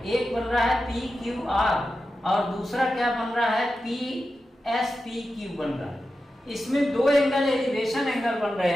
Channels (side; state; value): both; normal; correlation 0.91